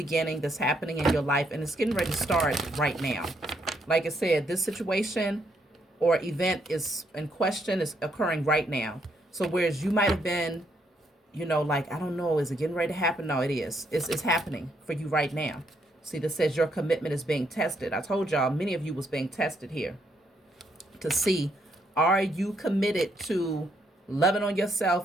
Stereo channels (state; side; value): normal; both; correlation 0.74